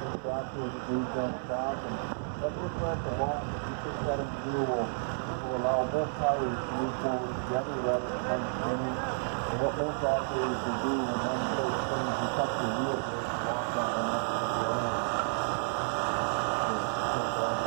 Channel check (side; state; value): left; silent; digital silence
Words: tractor is moved on the track, and that differential lock, if you put that into gear, will allow both tires to move forward together rather than one spinning. And what most operators will do when one foot spins, you touch the wheel brake and lock that one up to the end.